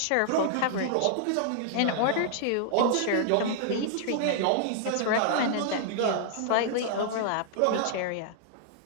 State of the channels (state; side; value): different; both; correlation -0.01